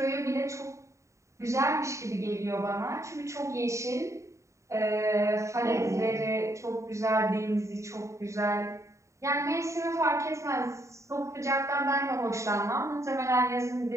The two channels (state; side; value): late; left; 0.14 ms